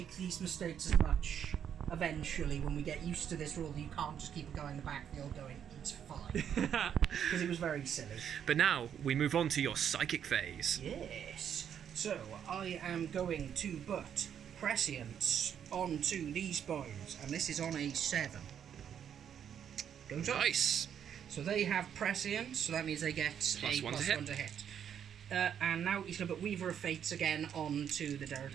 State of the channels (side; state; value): left; quieter; 8.7 dB